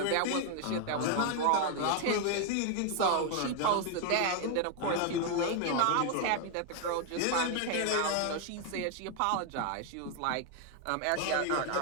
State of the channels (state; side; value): different; both; correlation 0.00